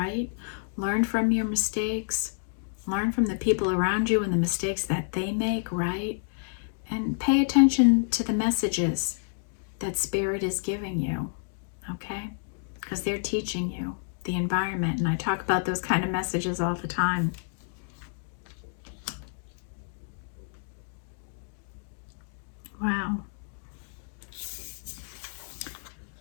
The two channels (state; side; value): silent; right; digital silence